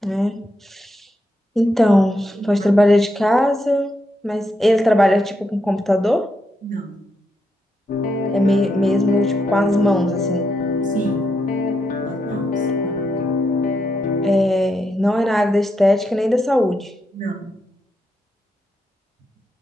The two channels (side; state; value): both; normal; correlation 0.82